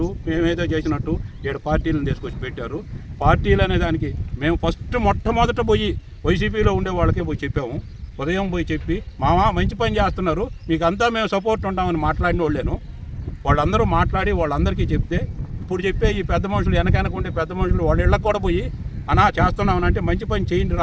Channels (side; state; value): both; identical; correlation 1.00